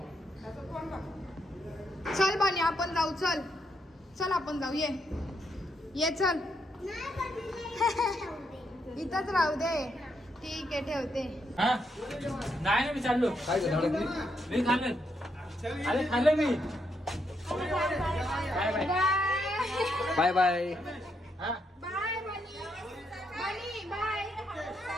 त्याचं कोण बघ चल बानी आपण जाऊ चल चल आपण जाऊ ये चल इथंच राहू दे ठीक आहे ठेवते हा नाही ना मी चाललो काय झालं मी खाल्लं अरे खाल्लं मी बाय बाय बाय बाय हा बाय बनी बाय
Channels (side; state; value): both; normal; correlation 0.79